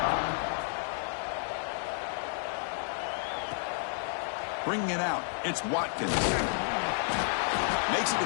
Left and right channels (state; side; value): silent; right; 57 dB below the other